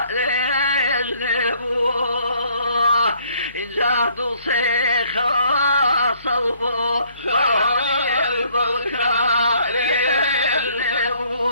يجنبوه إذا دوسي خواصوبو هوار بالكوار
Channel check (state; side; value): inverted; both; correlation -0.63